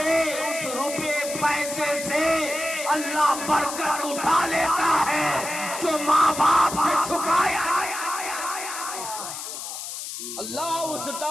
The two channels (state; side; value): noise; left; hiss, 7 dB below the sound